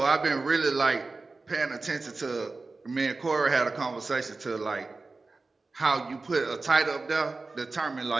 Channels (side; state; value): left; quieter; 3.7 dB